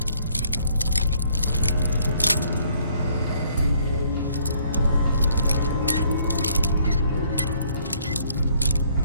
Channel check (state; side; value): inverted; both; correlation -0.64